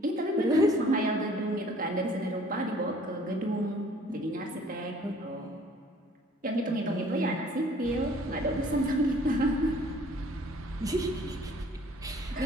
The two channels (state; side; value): normal; both; correlation 0.55